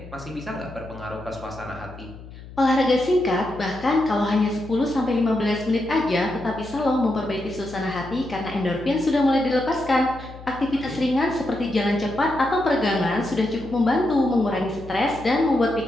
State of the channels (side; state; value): left; noise; hum, 16 dB below the sound